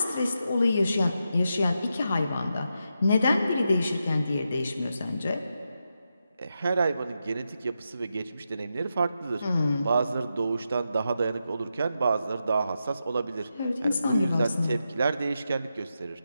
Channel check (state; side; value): inverted; both; correlation -0.87